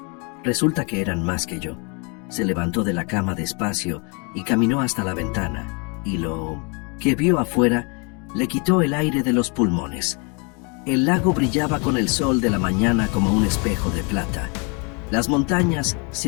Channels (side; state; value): right; quieter; 33.8 dB